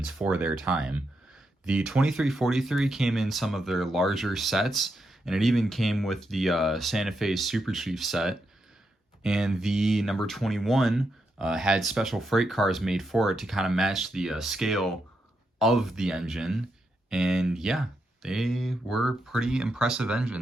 for their time. The 2343 came in some of their larger sets, and it even came with the Santa Fe Super Chief set. And the number 21 had special freight cars made for it to kind of match the scale of the engine. And yeah, they were pretty impressive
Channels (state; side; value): normal; both; correlation 0.83